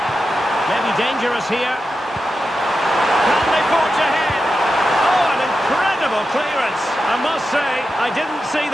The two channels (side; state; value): both; normal; correlation 0.90